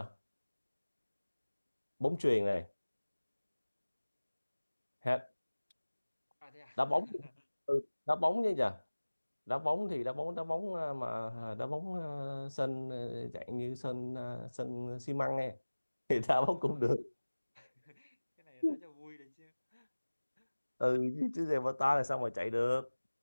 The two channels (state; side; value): inverted; both; correlation -1.00